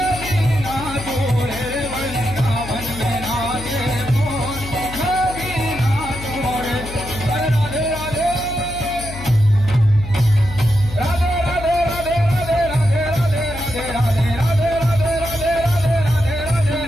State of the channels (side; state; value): left; noise; hum, 11 dB below the sound